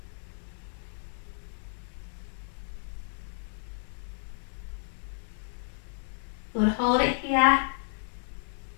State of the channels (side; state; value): right; silent; 56 dB below the other